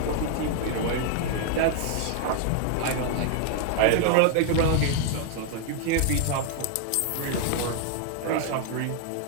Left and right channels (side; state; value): both; different; correlation 0.00